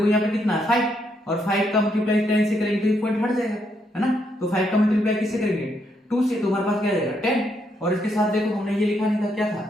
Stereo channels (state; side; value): normal; both; correlation 0.76